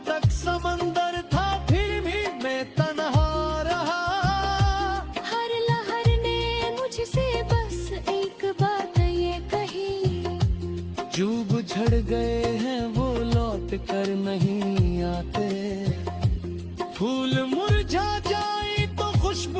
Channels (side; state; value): both; identical; correlation 1.00